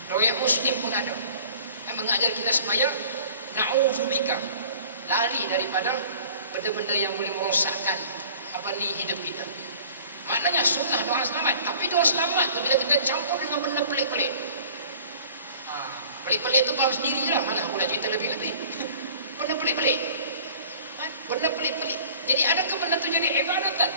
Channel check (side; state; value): both; inverted; correlation -0.48